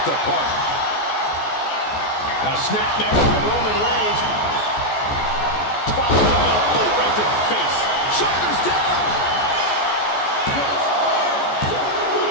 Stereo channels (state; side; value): late; right; 14 ms